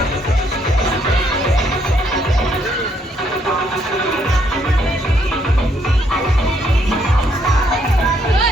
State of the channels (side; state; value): both; normal; correlation 0.71